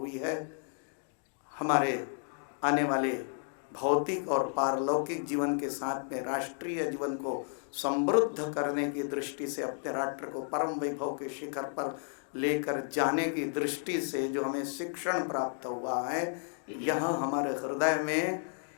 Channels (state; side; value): silent; right; 56 dB below the other